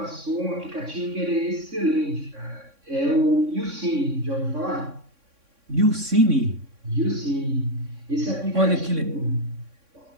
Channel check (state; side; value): late; left; 3.6 ms